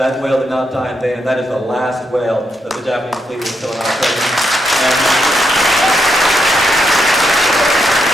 whale did not die in vain, and that is the last whale that the Japanese fleet was still in our presence.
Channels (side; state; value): both; normal; correlation 0.81